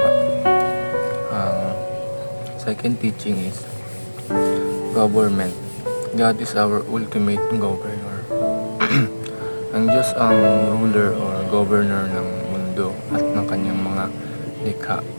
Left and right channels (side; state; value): both; inverted; correlation -1.00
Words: Second teaching is government. God is our ultimate governor. Ang Diyos ang ruler or governor ng mundo at ng kanyang mga likha.